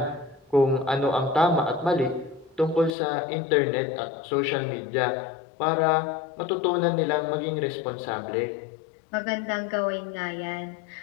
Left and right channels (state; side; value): drops out; right; at 2.9 s